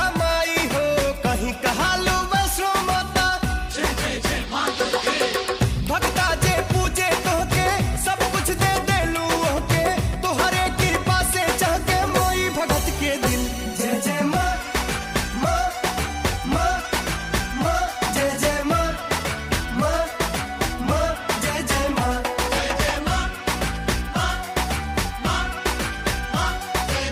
माई हो, कहीं कहालू वैष्णो माता। भक्ता जे पूजे तोहके सब कुछ दे देलू ओहके, तोहरे कृपा से चहके मोई भगत के दिल। जय जय माँ माँ माँ माँ, जय जय माँ माँ माँ, जय जय माँ। जय जय माँ माँ माँ माँ, जय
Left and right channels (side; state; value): both; identical; correlation 1.00